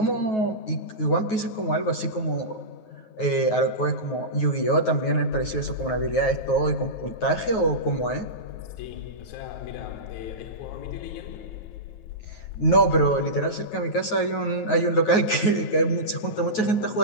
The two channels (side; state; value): right; late; 9.3 ms